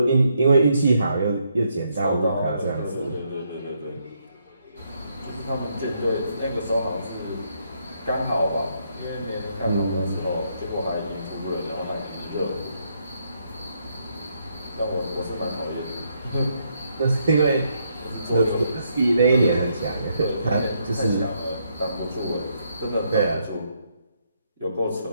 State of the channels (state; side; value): inverted; both; correlation -0.75